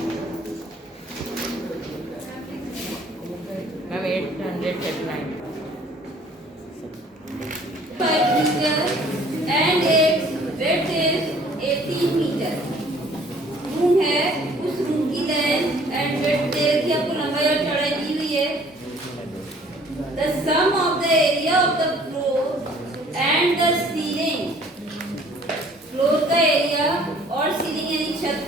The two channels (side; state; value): both; normal; correlation 0.55